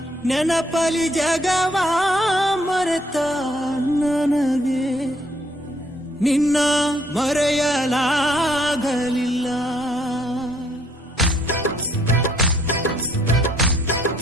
ನೆನಪಲಿ ಜಗವ ಮರೆತ ನನಗೆ ನಿನ್ನ ಮರೆಯಲಾಗಲಿಲ್ಲ.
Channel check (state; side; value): normal; both; correlation 0.67